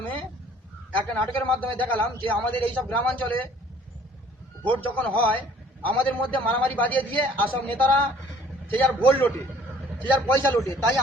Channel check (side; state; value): both; normal; correlation 0.55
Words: একটা নাটকের মাধ্যমে দেখালাম যে আমাদের এইসব গ্রামাঞ্চলে ভোট যখন হয় আমাদের মধ্যে মারামারি বাজিয়ে দিয়ে আসব নেতারা সে যার ভোট লোটে, সে যার পয়সা লোটে। তাই